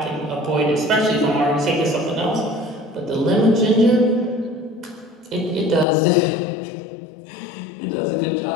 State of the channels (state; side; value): drops out; right; at 5.9 s